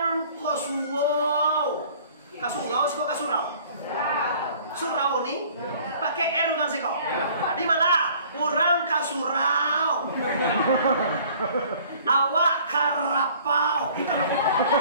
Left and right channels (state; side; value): inverted; both; correlation -0.53